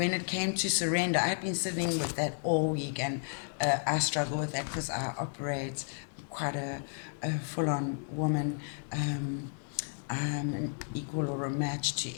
it came to surrender, I had been sitting with that all week, and I struggle with that because I operate quite a full-on woman. I'm an equal or a match to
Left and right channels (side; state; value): right; silent; digital silence